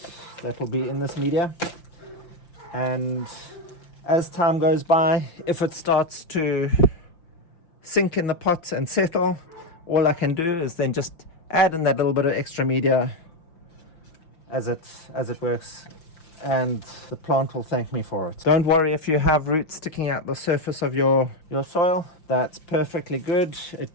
that will be in this media. And as time goes by, if it starts to sink in the pot and settle, all I can do is then just add in that little bit of extra media as it works, and the plant will thank me for it. Don't worry if you have roots sticking out the surface of your soil. That's perfectly good. It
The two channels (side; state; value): right; late; 5.8 ms